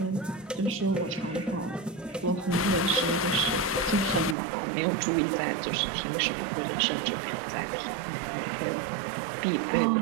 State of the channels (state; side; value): drops out; left; at 4.4 s